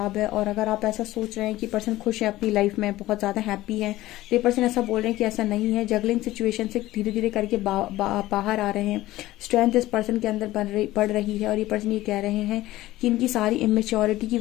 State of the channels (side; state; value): right; quieter; 16.5 dB